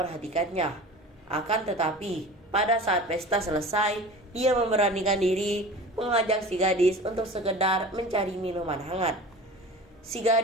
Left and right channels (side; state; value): both; normal; correlation 0.38